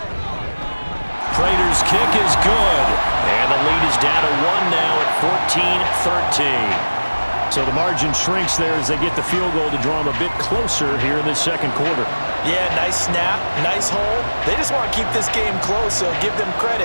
Prater's kick is good. And the lead is down to 1 now at 14-13. So the margin shrinks there as they get the field goal to draw them a bit closer here in the 2nd quarter. Yeah, nice snap, nice hole. They just want to keep this game close, so give them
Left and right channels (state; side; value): inverted; both; correlation -1.00